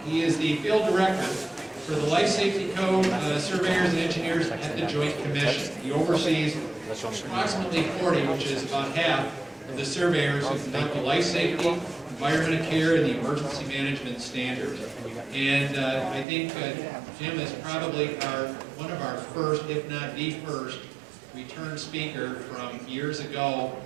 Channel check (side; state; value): left; drops out; at 16.2 s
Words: He is the field director for the Life Safety Code surveyors and engineers at the Joint Commission. He oversees approximately 40, which is about half of the surveyors who conduct the life safety, environmental care, and the emergency management standards. And I think Jim is probably one of our first, if not the first, return speaker from years ago